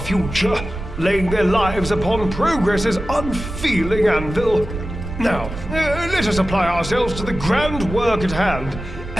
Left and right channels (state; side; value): noise; right; rumble, 9 dB below the sound